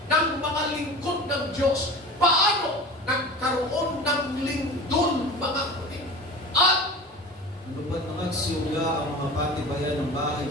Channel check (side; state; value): both; normal; correlation 0.35